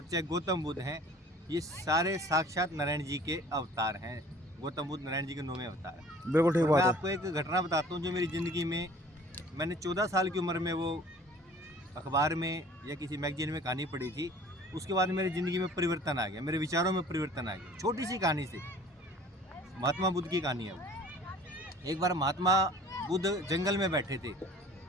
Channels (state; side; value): normal; both; correlation 0.49